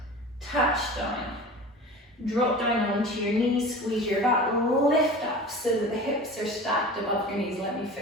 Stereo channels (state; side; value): normal; both; correlation 0.37